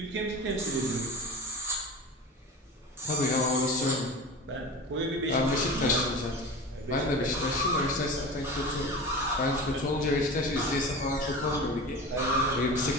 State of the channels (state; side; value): normal; both; correlation 0.32